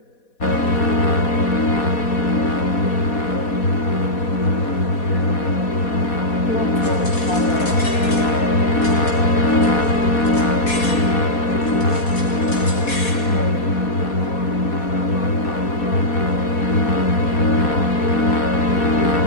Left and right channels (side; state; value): right; late; 4.2 ms